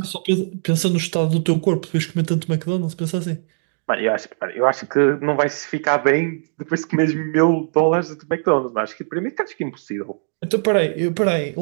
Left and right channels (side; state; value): left; silent; digital silence